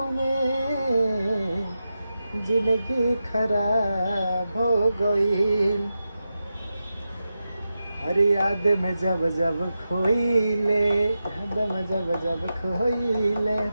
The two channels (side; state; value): both; inverted; correlation -0.90